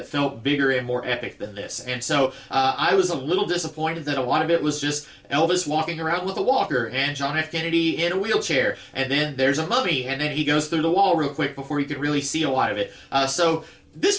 felt bigger and more epic than this, and so I was a little disappointed that a lot of it was just Elvis walking around with a walker and John F. Kennedy in a wheelchair, and then there's a mummy, and then he goes through the wall real quick before you can really see a lot of it. So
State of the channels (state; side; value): identical; both; correlation 1.00